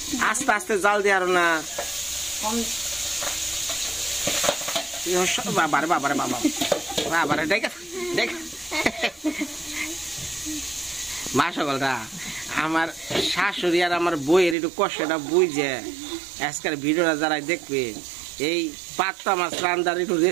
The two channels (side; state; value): left; drops out; at 14.6 s